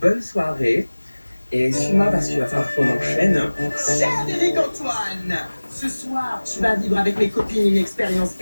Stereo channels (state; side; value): inverted; both; correlation -1.00